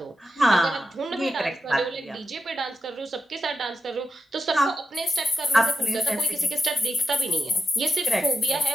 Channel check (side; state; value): both; normal; correlation 0.86